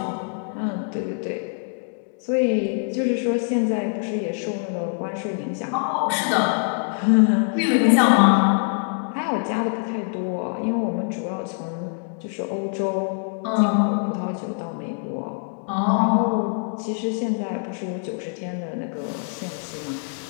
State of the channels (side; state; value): right; silent; 56 dB below the other